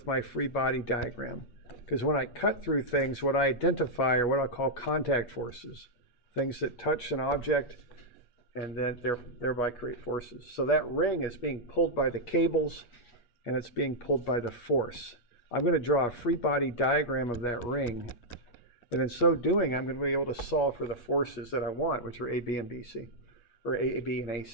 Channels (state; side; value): late; right; 8.4 ms